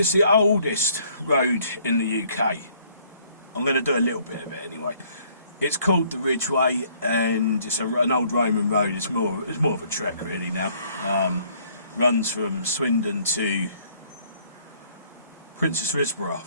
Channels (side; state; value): both; inverted; correlation -0.63